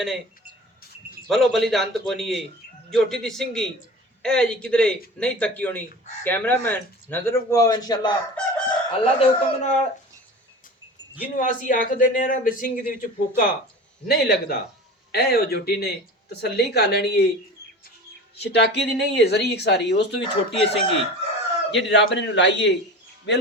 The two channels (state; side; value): normal; both; correlation 0.36